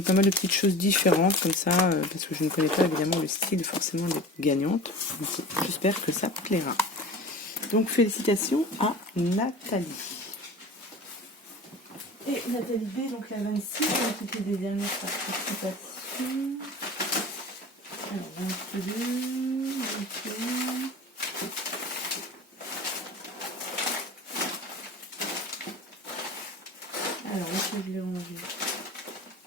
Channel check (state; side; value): normal; both; correlation 0.37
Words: mal de petites choses différentes comme ça, parce que je ne connais pas évidemment le style forcément des gagnantes. J'espère que ça plaira. Donc félicitations à Nathalie. Et Nathalie B, donc la 26, c'était des dernières participations. Alors 22, 21. Alors, est-ce que je l'ai rangé?